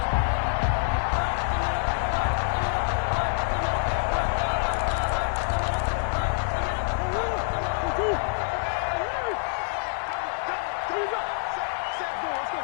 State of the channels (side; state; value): right; silent; 61 dB below the other